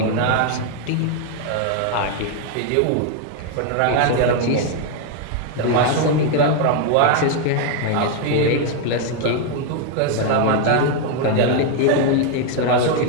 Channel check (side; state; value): both; different; correlation 0.01